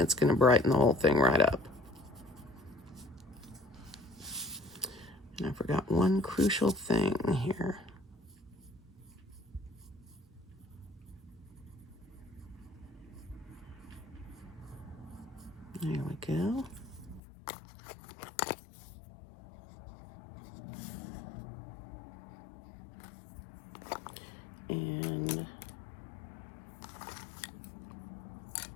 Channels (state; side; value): drops out; right; at 17.2 s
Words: going to brighten the whole thing right up. And I forgot one crucial thing here. There we go. And